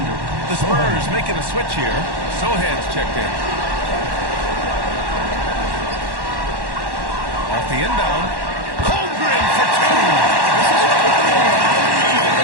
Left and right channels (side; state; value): left; late; 1.1 ms